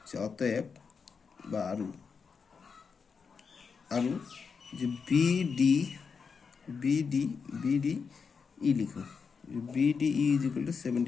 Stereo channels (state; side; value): quieter; right; 5.6 dB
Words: যে অতএব বা আৰু যে বি ডি ই লিখোঁ B D E is equal to